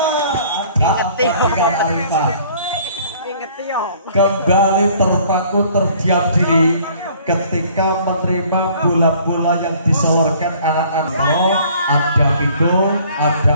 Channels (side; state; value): both; inverted; correlation -0.56